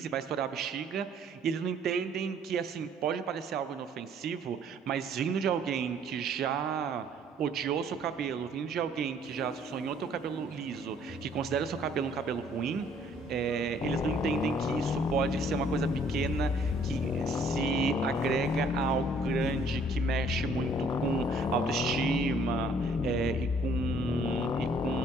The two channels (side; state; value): both; normal; correlation 0.60